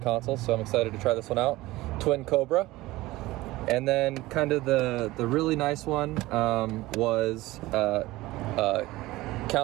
console, so I'm excited to try this one out. Twin Cobra. And then kind of the really nice one was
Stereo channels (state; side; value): quieter; left; 18.6 dB